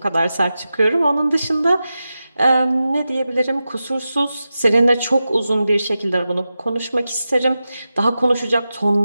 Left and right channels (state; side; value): inverted; both; correlation -0.92